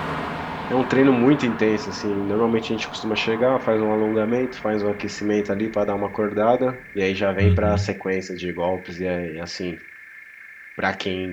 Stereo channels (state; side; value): identical; both; correlation 1.00